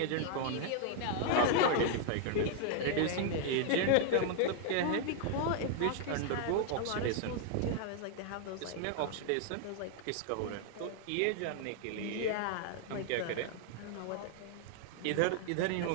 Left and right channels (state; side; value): different; both; correlation 0.00